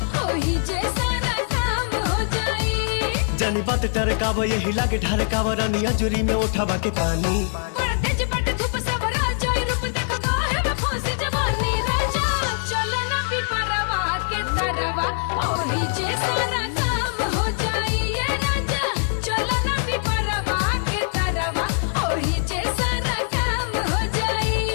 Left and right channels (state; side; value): silent; right; 63 dB below the other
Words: ओही जे सारा काम हो जाई। जानी बात टरकाव यही लागे ढरकाव रानिया जुरी में उठावा के पानी। बड़ा तेज बट धूप सब राजा रूप देखो काहे में फंसी जवानी। राजा चलो ना पिपरवा के तरवा ओही जे सारा काम हो जाई। ए राजा चलो ना पिपरवा के तरवा ओही जे सारा काम हो जाई।